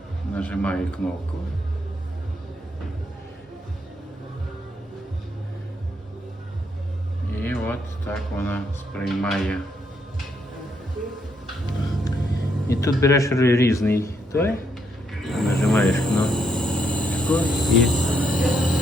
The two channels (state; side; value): normal; both; correlation 0.76